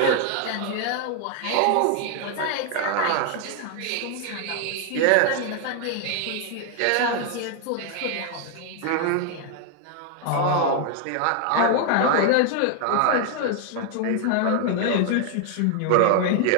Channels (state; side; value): different; both; correlation 0.00